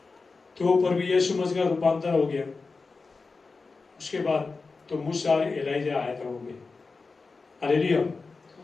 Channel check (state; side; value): quieter; right; 4.2 dB